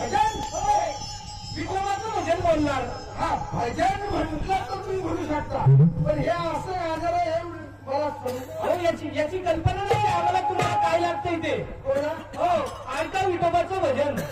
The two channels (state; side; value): identical; both; correlation 1.00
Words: विठोबाचं भजन बोलणार. हा भजन म्हटलं तर तुम्ही म्हणू शकता, पण हे असं आजार आहे मला अहो याची कल्पना नाही आम्हाला. तुम्हाला काय लागतंय ते? हो ऐका विठोबाचं भजन.